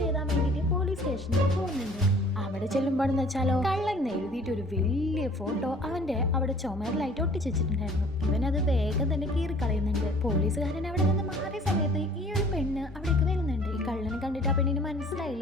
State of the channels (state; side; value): normal; both; correlation 0.52